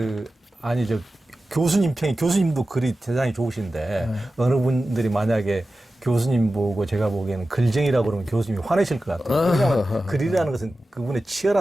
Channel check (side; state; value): both; normal; correlation 0.94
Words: 교수님 평이 교수님도 글이 대단히 좋으신데 어느 분들이 만약에 교수님 보고 제가 보기에는 글쟁이라고 그러면 교수님이 화내실 것 같아요. 왜냐하면 글이라는 것은 그분의